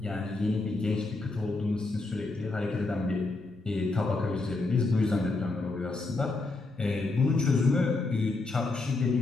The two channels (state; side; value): quieter; right; 3.3 dB